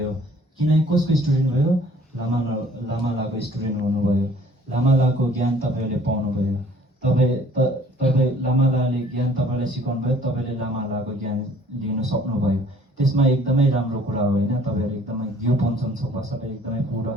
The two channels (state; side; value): normal; both; correlation 0.56